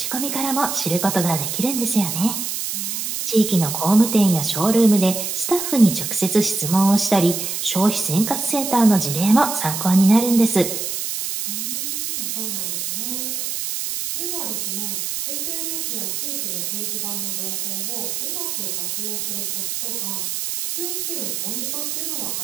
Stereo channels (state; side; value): noise; right; hiss, 3 dB below the sound